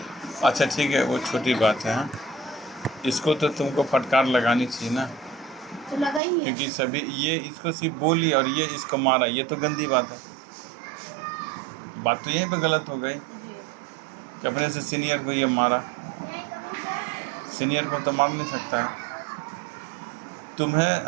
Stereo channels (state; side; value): drops out; left; at 6.2 s